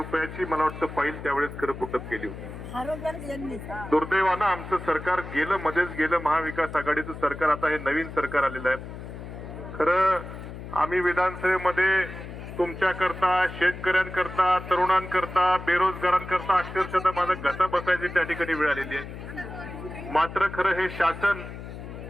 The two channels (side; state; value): left; noise; hum, 11 dB below the sound